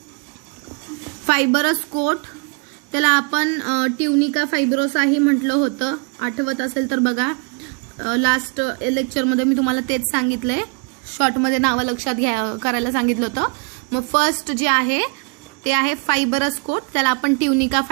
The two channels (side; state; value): left; quieter; 35.4 dB